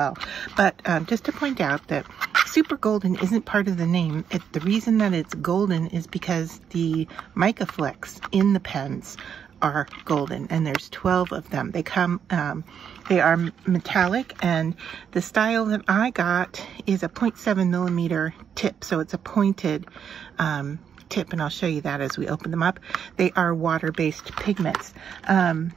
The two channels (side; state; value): left; quieter; 7.9 dB